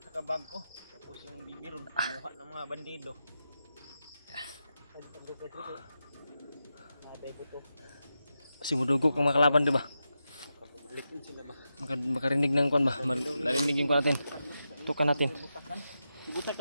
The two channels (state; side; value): inverted; both; correlation -0.89